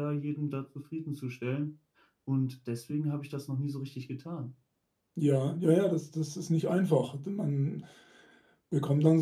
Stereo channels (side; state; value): both; identical; correlation 1.00